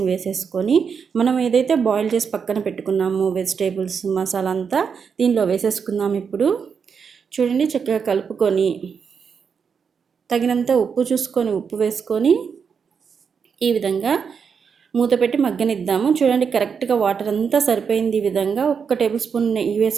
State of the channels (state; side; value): quieter; left; 6.3 dB